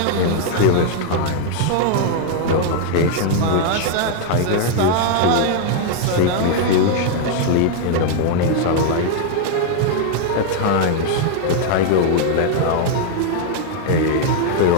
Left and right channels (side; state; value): both; different; correlation 0.00